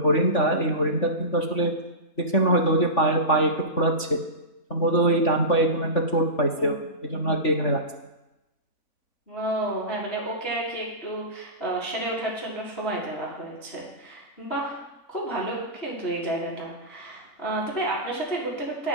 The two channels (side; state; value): right; late; 3.5 ms